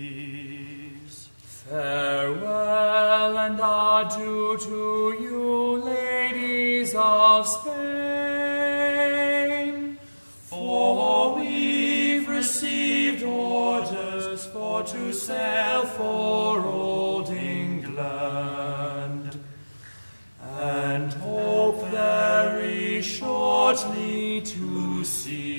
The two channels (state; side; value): inverted; both; correlation -1.00